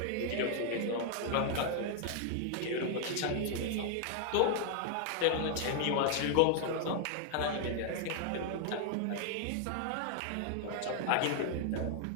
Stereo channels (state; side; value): different; both; correlation 0.00